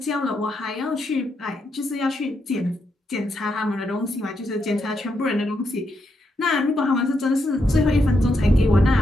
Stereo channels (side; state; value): both; normal; correlation 0.81